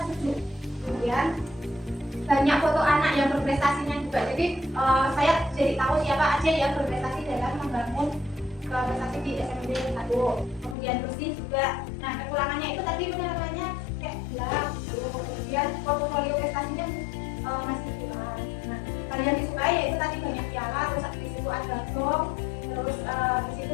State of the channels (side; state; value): right; drops out; at 10.8 s